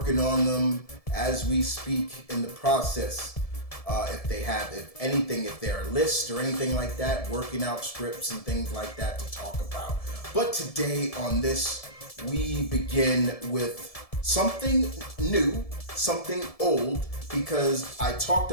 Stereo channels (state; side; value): late; right; 1.7 ms